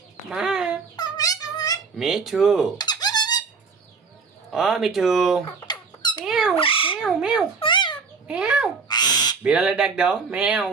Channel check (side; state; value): left; quieter; 4.9 dB